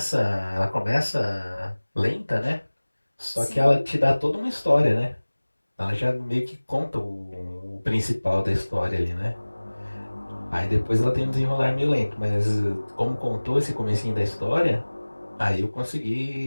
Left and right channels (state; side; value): inverted; both; correlation -1.00